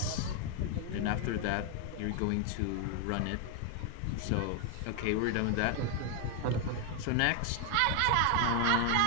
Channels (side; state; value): both; different; correlation 0.00